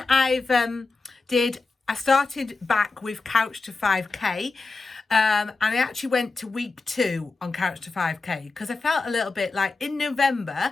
I started back with Couch to 5K. And I actually went to week 2 on Couch to 5K because I felt a little bit like in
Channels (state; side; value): quieter; right; 3.8 dB